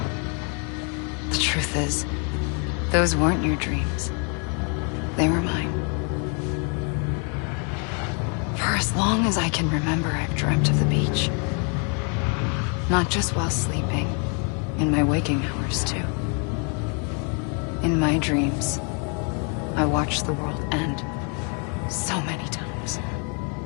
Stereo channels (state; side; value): quieter; right; 38.0 dB